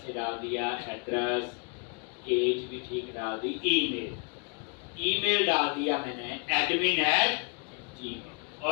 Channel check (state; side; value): quieter; right; 33.8 dB